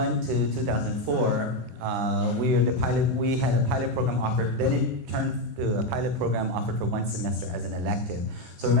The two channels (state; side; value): late; left; 24 ms